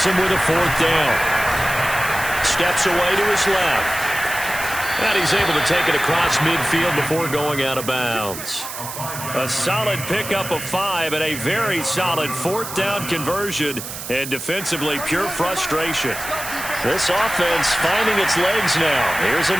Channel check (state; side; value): noise; right; hiss, 9 dB below the sound